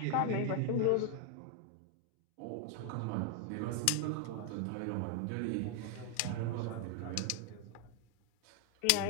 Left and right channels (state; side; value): different; both; correlation 0.00